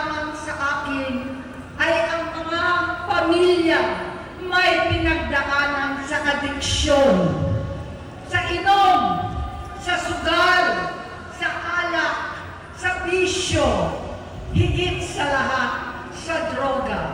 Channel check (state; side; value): identical; both; correlation 1.00